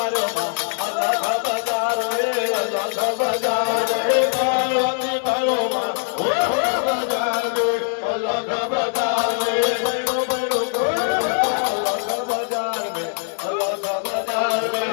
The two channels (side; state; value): right; silent; digital silence